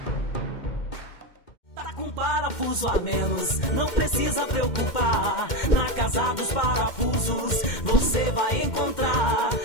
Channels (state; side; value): late; right; 2.1 ms